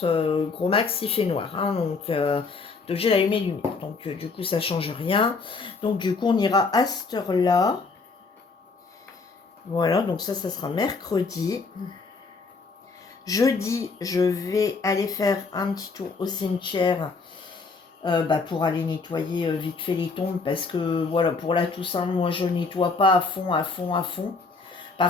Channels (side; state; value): right; quieter; 4.3 dB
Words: gros max, il fait noir. Hein, donc, j'ai allumé les lumières. Donc, du coup, ça change rien. Donc, du coup, on ira à cette heure-là. Voilà, donc ça sera mercredi. Jeudi, je vais aller faire un petit tour au cimetière pour aller nettoyer vite fait les tombes. Parce que, voilà, pour la Toussaint, moi, je nettoie pas à fond, à fond, à fond.